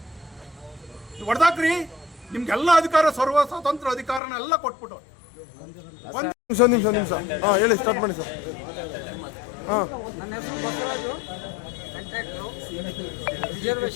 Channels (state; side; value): drops out; right; at 4.2 s